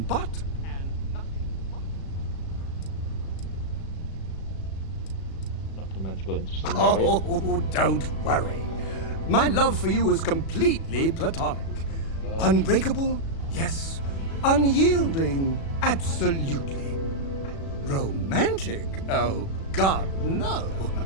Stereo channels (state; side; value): late; right; 36 ms